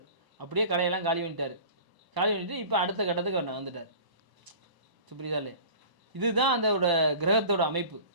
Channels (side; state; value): left; late; 1.0 ms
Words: அப்படியே கடையெல்லாம் காலி பண்ணிட்டார். காலி பண்ணிட்டு இப்போ அடுத்த கட்டத்துக்கு அவர் வந்துட்டார். புரியுதா இல்லையா? இதுதான் அதோட கிரகத்தோட அமைப்பு.